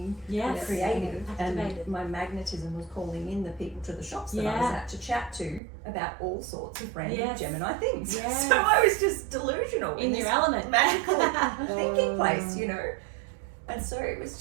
creative, and my magnetism was calling in the people to the shops that I was at to chat to about all sorts of random Gemini things. So I was just delusional in your element, magical thinking place, you know. And so it was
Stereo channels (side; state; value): left; drops out; at 5.6 s